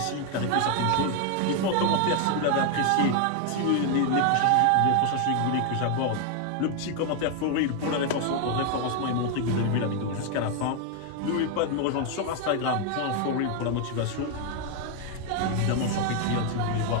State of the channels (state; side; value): different; both; correlation 0.01